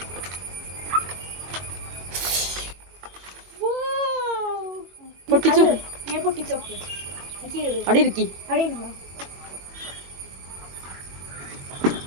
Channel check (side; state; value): left; late; 22 ms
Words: പൊട്ടിച്ചോക്ക്. ഞാൻ പൊട്ടിച്ചോക്ക്. അവിടെ ഇരിക്കി. അവിടെ ഇരുന്നോ.